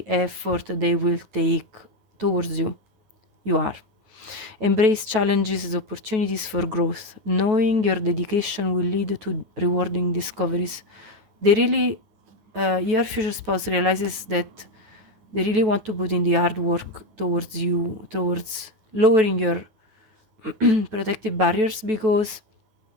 effort they will take towards you. You are. Embrace challenges as opportunities for growth, knowing your dedication will lead to rewarding discoveries. They really, your future spouse realizes that they really want to put in the hard work towards you, towards lowering your protective barriers, because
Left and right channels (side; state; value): left; late; 9.2 ms